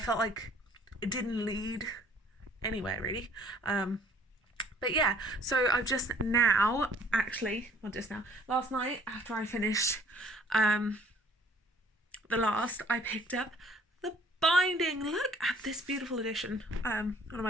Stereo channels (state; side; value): normal; both; correlation 0.56